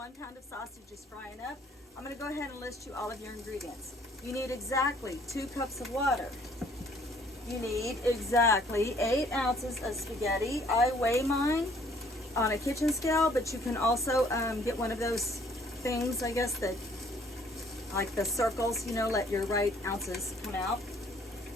pound of sausage is frying up, I'm going to go ahead and list you all of your ingredients. You need exactly 2 cups of water. You need exactly 8 ounces of spaghetti. I weigh mine on a kitchen scale, but you can also get one of those things, I guess, that like the circles, you know, let your right ounces come out.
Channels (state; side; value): normal; both; correlation 0.60